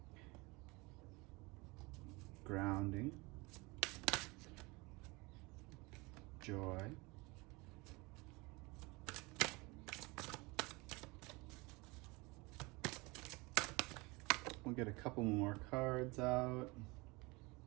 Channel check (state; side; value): quieter; left; 25.2 dB